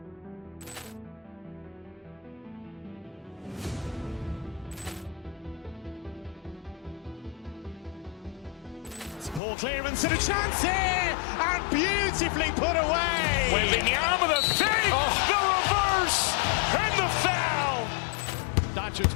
Ball clearance and a chance here, and beautifully put away. Wembanyama with a save, the reverse, and the foul. Doncic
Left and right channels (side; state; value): right; drops out; at 9.4 s